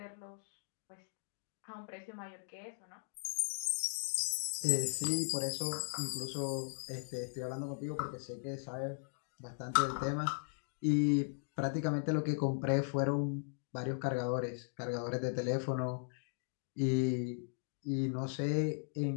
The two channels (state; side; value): silent; right; digital silence